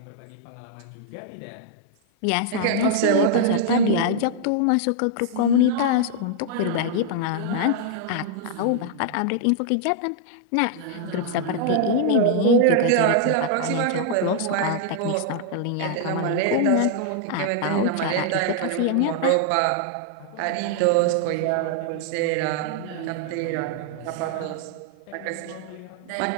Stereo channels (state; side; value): different; both; correlation -0.01